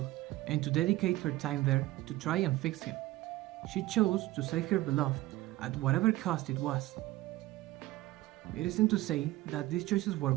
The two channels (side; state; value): left; quieter; 17.5 dB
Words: and to dedicate her time there to try and fix him. She chose to save her beloved at whatever cost it was. It isn't to say that these choices were